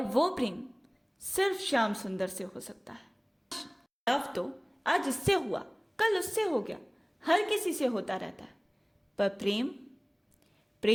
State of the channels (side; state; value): both; identical; correlation 1.00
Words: वो प्रेम सिर्फ श्याम सुंदर से हो सकता है। लव तो आज इससे हुआ, कल उससे हो गया, हर किसी से होता रहता है। पर प्रेम,